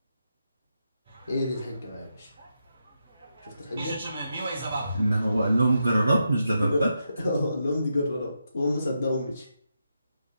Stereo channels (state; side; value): inverted; both; correlation -0.84